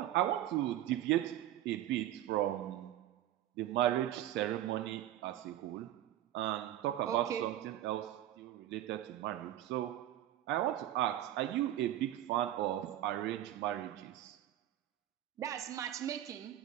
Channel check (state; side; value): quieter; left; 12.9 dB